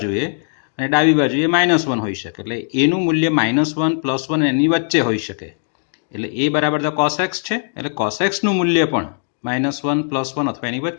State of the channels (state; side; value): silent; right; digital silence